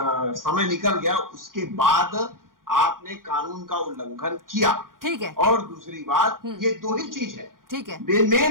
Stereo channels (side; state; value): left; late; 0.91 ms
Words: समय निकल गया, उसके बाद आपने कानून का उल्लंघन किया। ठीक है। और दूसरी बात, ये दो ही चीज है। ठीक है,